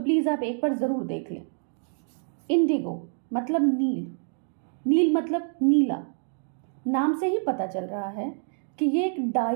आप एक बार ज़रूर देख लें। इंडिगो मतलब नील, नील मतलब नीला। नाम से ही पता चल रहा है कि ये एक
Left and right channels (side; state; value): left; silent; 60 dB below the other